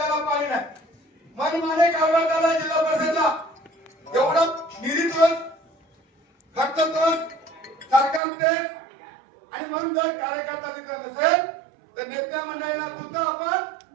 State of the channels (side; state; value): left; drops out; at 8.2 s